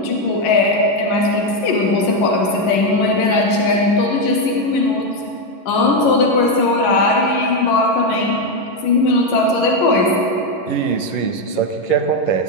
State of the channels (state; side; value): late; right; 11 ms